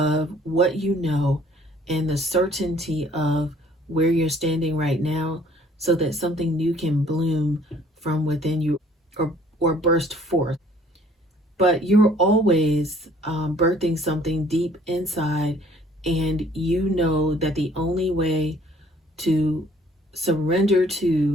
what you know and the certainty of where you're standing right now, so that something new can bloom from within you, or burst forth. But you're always birthing something deep inside, and you know that the only way to surrender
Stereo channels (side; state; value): both; normal; correlation 0.57